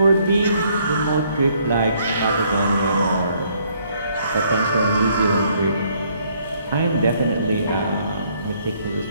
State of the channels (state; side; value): inverted; both; correlation -0.67